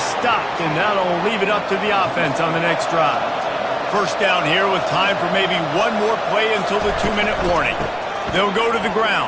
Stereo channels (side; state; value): both; identical; correlation 1.00